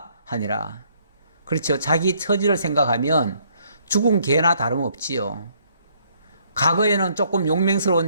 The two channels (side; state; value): both; inverted; correlation -0.67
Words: 하니라. 그렇죠. 자기 처지를 생각하면 죽은 개나 다름없지요. 과거에는 조금